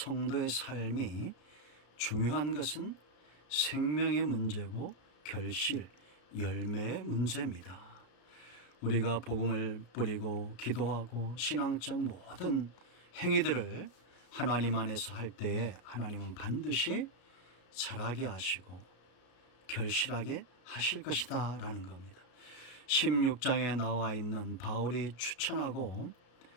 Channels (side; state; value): right; late; 33 ms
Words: 삶이 중요한 것은 생명의 문제고 결실, 열매의 문제입니다. 우리가 복음을 뿌리고 기도하고 신앙적 모든 행위들을 하나님 안에서 할 때에 하나님은 반드시 잘하게 하시고 결실하게 하실 것이다 라는 겁니다. 16장에 나와 있는 바울이 추천하고